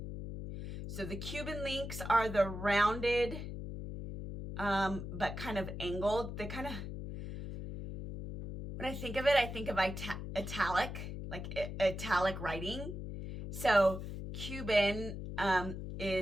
So the Cuban links are the rounded, but kind of angled. They kind of, when I think of it, I think of italic. Like italic writing. So Cuban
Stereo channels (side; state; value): left; noise; hum, 7 dB below the sound